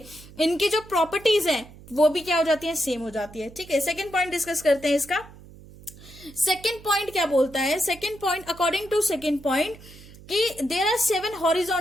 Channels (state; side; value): noise; right; hum, 20 dB below the sound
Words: इनकी जो प्रॉपर्टीज हैं वो भी क्या हो जाती है, सेम हो जाती है। ठीक है, सेकंड पॉइंट डिस्कस करते हैं इसका। सेकंड पॉइंट क्या बोलता है, second point, according to second point, कि there are 7